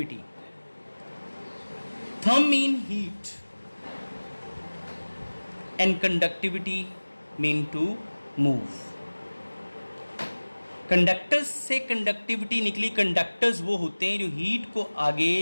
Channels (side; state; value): both; inverted; correlation -1.00